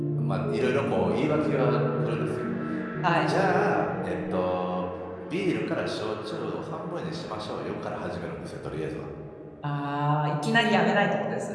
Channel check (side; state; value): both; identical; correlation 1.00